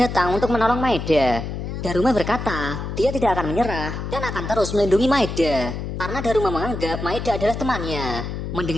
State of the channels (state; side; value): noise; left; hum, 5 dB below the sound